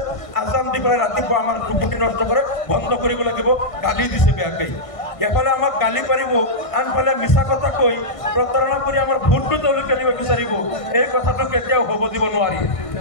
আজান দি পেলাই ৰাতিপুৱা আমাৰ টোপনি নষ্ট কৰে, বন্ধ কৰিব লাগিব, গালি দিছে বেয়াকৈ। এফালে আমাক গালি পাৰিব, আনফালে মিছা কথা কৈ প্ৰতাৰণা কৰি আমাৰ ভোটটো তেওঁলোকে নিব বিচাৰিব। এই কথাটো কেতিয়াও হ'ব দিব নোৱাৰি।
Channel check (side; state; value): right; late; 1.6 ms